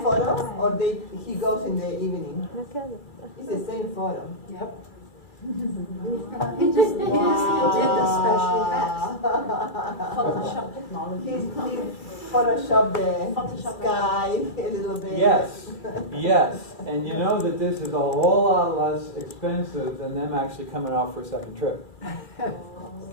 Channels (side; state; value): right; late; 2.3 ms